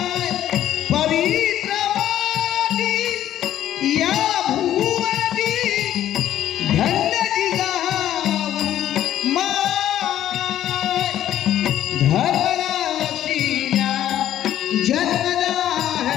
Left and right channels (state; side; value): quieter; right; 11.9 dB